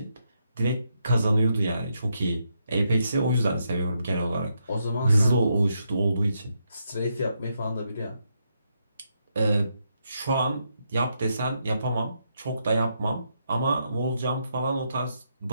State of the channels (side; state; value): both; inverted; correlation -0.80